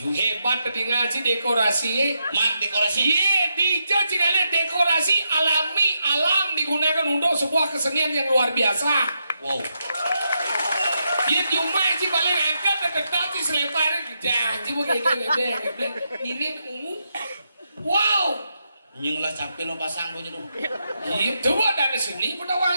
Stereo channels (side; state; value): both; inverted; correlation -0.83